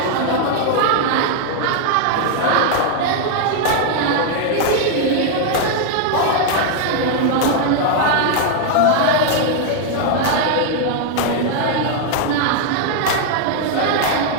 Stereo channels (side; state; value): both; different; correlation 0.00